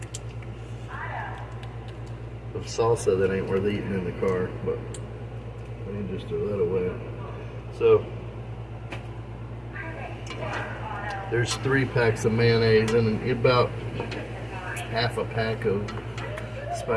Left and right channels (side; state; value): both; identical; correlation 1.00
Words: of salsa that ain't worth eating in the car, but I need to just throw that away. So there's 3 packs of mayonnaise and about half a pack of